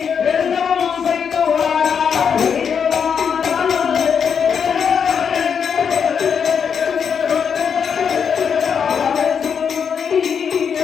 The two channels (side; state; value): right; quieter; 7.0 dB